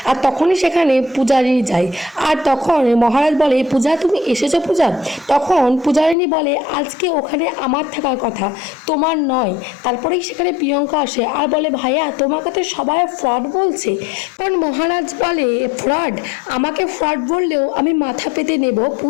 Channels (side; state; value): right; drops out; at 6.2 s